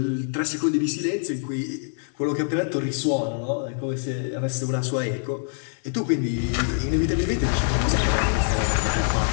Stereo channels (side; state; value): right; silent; 62 dB below the other